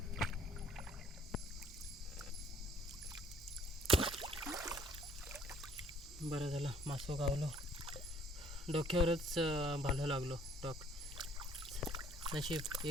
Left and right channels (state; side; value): normal; both; correlation 0.60